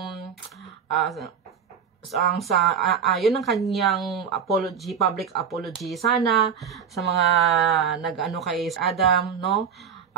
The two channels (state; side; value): quieter; left; 7.3 dB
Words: yun ang kanyang apology, public apology. Sana sa mga nag-ano kay Adam, no?